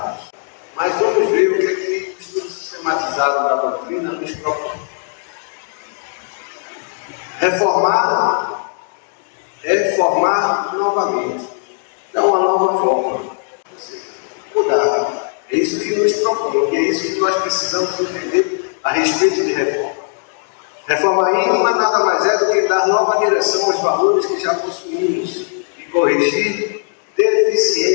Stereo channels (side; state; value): right; silent; 57 dB below the other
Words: Mas vamos ver o que é que o estudo sistematizado da doutrina nos propõe. Reformar é formar novamente, dar uma nova forma, ou seja, mudar. É isso que nos propõe, e é isso que nós precisamos entender a respeito de reforma. Reforma íntima nada mais é do que dar nova direção aos valores que já possuímos e corrigir